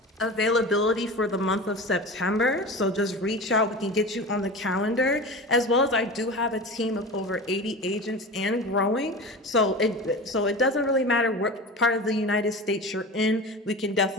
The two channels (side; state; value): both; normal; correlation 0.31